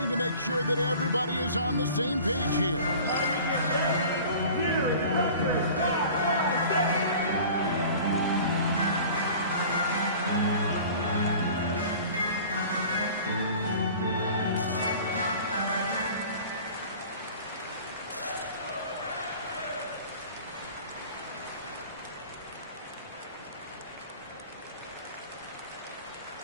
to make sure that everybody is on the same page here.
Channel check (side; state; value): both; inverted; correlation -0.43